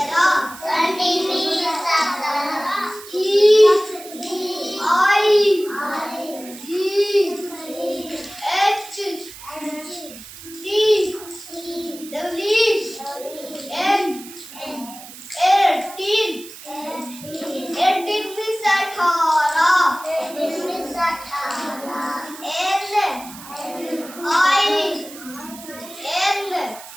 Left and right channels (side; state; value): right; noise; hiss, 16 dB below the sound